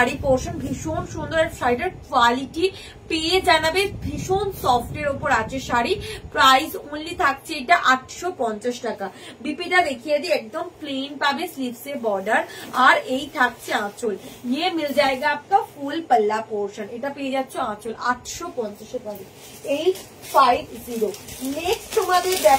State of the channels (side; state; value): both; identical; correlation 1.00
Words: পোর্শন। ভীষণ সুন্দর শাড়িটার কোয়ালিটি পেয়ে জানাবে, ভীষণ সফটের উপর আছে শাড়ি। প্রাইস ওনলি থাকছে এটা 850 টাকা। বিপিটা দেখিয়ে দিই, একদম প্লেন পাবে, স্লিভসে বর্ডার, আর এই থাকছে আঁচল। ये मिल जाएगा आपका फुल पल्ला पोर्शन, এটা পেয়ে যাচ্ছে আঁচল 850 এ পাবে। 850। নেক্সট তোমাদের